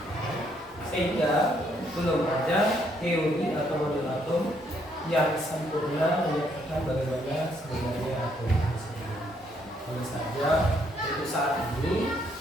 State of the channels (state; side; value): normal; both; correlation 0.71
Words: Sehingga belum ada teori atau model atom yang sempurna menyatakan bagaimana sebenarnya atom tersebut. Hanya saja untuk saat ini